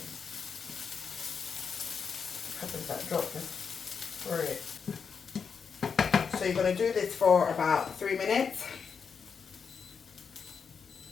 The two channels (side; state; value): right; quieter; 6.1 dB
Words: Peppers that dropped for it. So you're going to do this for about 3 minutes.